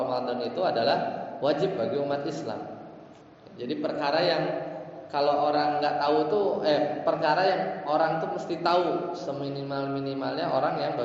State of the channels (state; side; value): identical; both; correlation 1.00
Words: itu adalah wajib bagi umat Islam. Jadi perkara yang kalau orang nggak tahu tuh perkara yang orang tuh mesti tahu seminimal-minimalnya orang yang